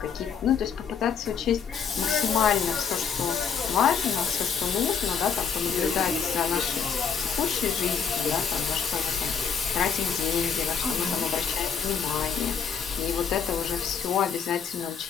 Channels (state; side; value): quieter; right; 6.6 dB